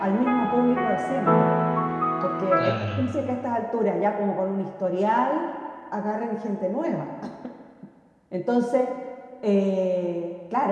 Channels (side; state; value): both; identical; correlation 1.00